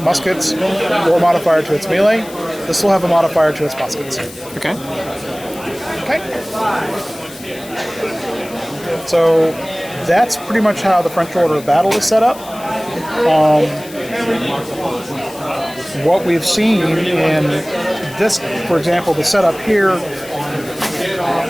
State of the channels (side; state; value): left; noise; hiss, 18 dB below the sound